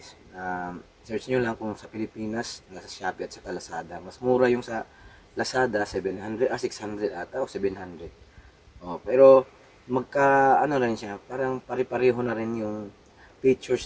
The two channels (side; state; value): both; identical; correlation 1.00